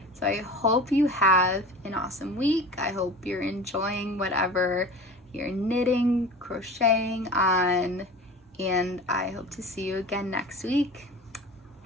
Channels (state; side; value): normal; both; correlation 0.37